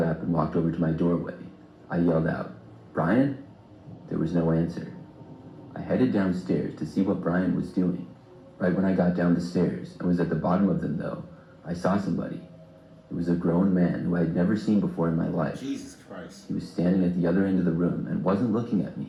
up and walked over to my doorway. I yelled out, "Brian?" There was no answer. I headed downstairs to see what Brian was doing. Right when I got down the stairs and was at the bottom of them though, I saw somebody. It was a grown man who I had never seen before in my life. Jesus Christ. He was standing at the other end of the room and wasn't looking at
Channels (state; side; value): identical; both; correlation 1.00